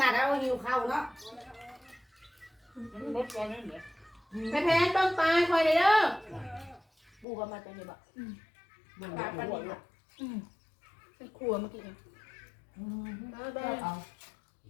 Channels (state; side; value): drops out; right; at 7.2 s